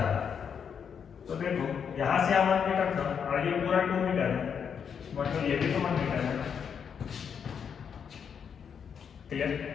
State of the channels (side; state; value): right; quieter; 7.2 dB